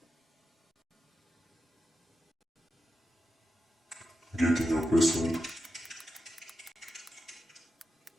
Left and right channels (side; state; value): both; normal; correlation 0.89